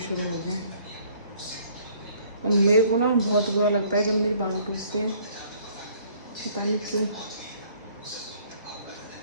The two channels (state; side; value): inverted; both; correlation -0.59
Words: हो गए। और मेरे को ना बहुत बुरा लगता है जब मेरे बाल टूटते हैं, पता नहीं क्यों।